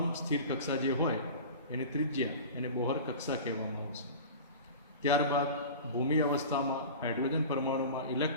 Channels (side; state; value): both; inverted; correlation -0.35